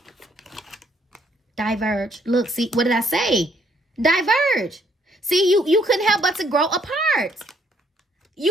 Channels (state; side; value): normal; both; correlation 0.68